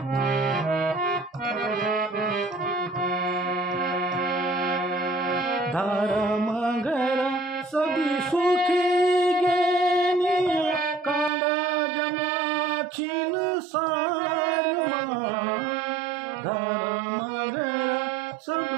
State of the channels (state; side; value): drops out; left; at 11.3 s